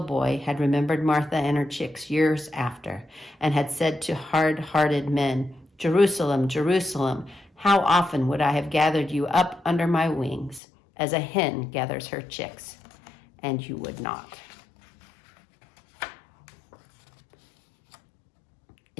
had remembered Martha and her chicks years after, and had said to hard-hearted men, "Jerusalem, Jerusalem, how often would I have gathered you up under my wings, as a hen gathers her chicks, and you would not."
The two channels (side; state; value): right; drops out; at 10.6 s